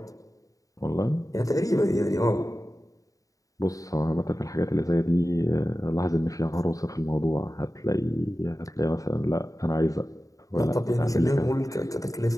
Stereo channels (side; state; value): right; late; 0.16 ms